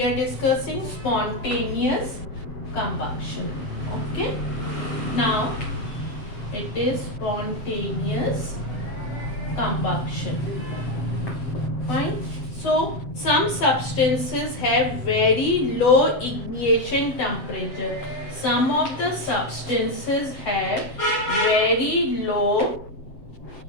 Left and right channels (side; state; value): right; late; 7.7 ms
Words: are discussing spontaneous combustion. Okay. Now it is spontaneous combustion. Fine. So some substances have very low ignition temperature. Some of the substances have very low